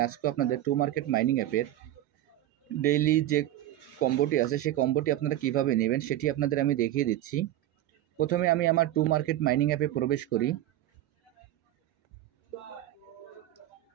আজকেও আপনাদের টু মার্কেট মাইনিং অ্যাপের ডেইলি যে কম্বোটি আছে সেই কম্বোটি আপনারা কিভাবে নেবেন সেটি আপনাদের আমি দেখিয়ে দিচ্ছি। প্রথমে আমি আমার টু মার্কেট মাইনিং অ্যাপে প্রবেশ করি।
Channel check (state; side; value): quieter; left; 13.5 dB